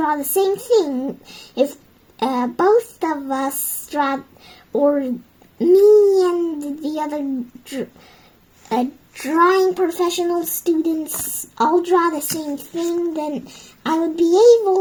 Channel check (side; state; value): both; identical; correlation 1.00